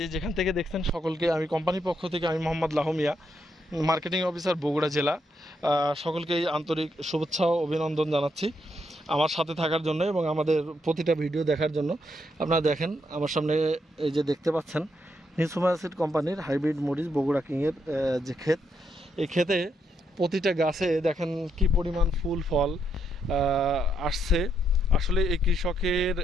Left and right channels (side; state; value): both; normal; correlation 0.78